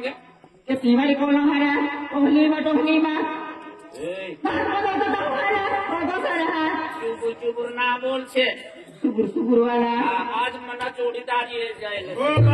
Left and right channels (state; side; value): identical; both; correlation 1.00